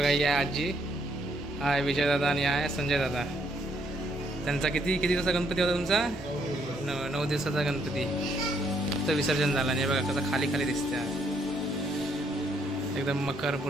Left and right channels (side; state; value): both; normal; correlation 0.71